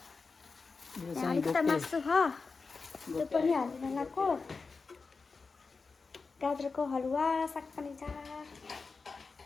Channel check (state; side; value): quieter; right; 4.5 dB